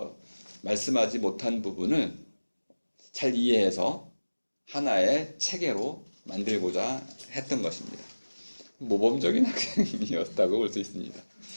말씀하지 못한 부분을 잘 이해해서 하나의 체계로 만들고자 했던 것입니다. 모범적인 학생이었다고 볼 수 있습니다.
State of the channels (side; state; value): both; inverted; correlation -1.00